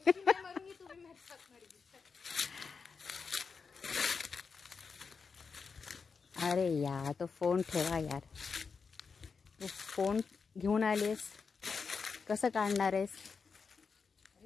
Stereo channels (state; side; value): quieter; right; 5.3 dB